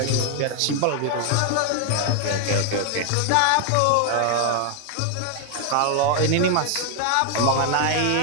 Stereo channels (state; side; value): different; both; correlation 0.00